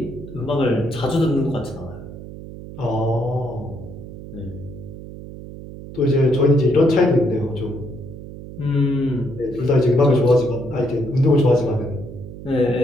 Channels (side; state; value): right; noise; hum, 13 dB below the sound